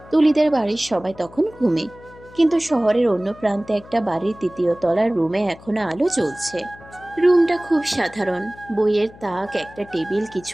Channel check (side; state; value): left; noise; hum, 21 dB below the sound